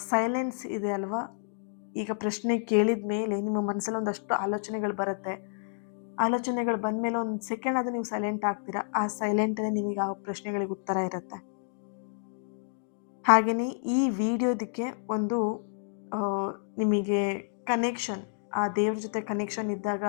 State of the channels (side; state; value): right; silent; digital silence